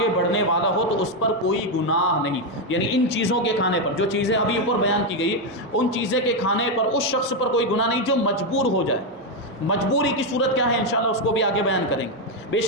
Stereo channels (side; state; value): both; normal; correlation 0.05